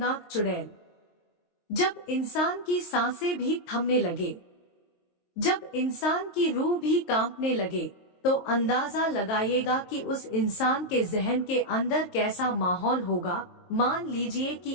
चुड़ैल। जब इंसान की सांसें भी थमने लगे, जब इंसान की रूह भी कांपने लगे, तो अंदाजा लगाइएगा कि उस इंसान के जहन के अंदर कैसा माहौल होगा। मान लीजिए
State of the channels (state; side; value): late; right; 23 ms